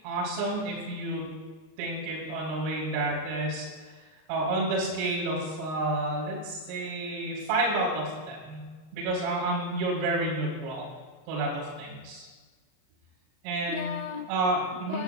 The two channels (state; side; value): late; left; 39 ms